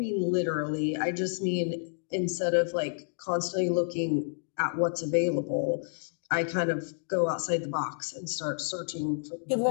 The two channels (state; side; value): silent; right; digital silence